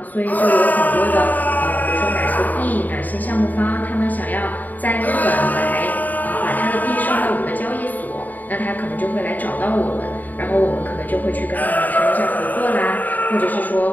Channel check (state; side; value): late; right; 0.083 ms